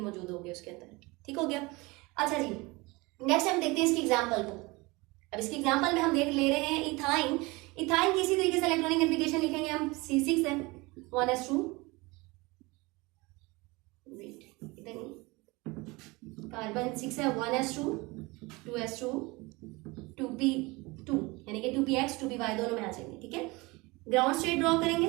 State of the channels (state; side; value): quieter; left; 24.1 dB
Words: होंगे उसके अंदर। ठीक हो गया। अच्छा जी, नेक्स्ट हम देखते हैं इसकी एग्जांपल को। अब इसकी एग्जांपल में हम देख ले रहे हैं इथाइन। इथाइन की इसी तरीके से इलेक्ट्रॉनिक कन्फिगरेशन लिखेंगे हम, C6 है 1s2, इधर नहीं, कार्बन 6 है 1s2, 2s2, 2p2, यानी कि 2px 2py दोनों में आ जाएंगे। ठीक है, ग्राउंड स्टेट ड्रॉ